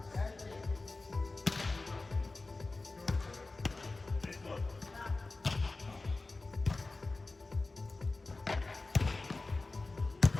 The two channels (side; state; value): right; quieter; 3.4 dB